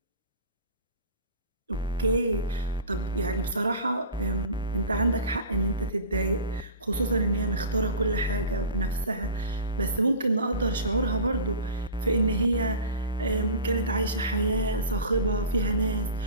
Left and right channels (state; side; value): inverted; both; correlation -0.35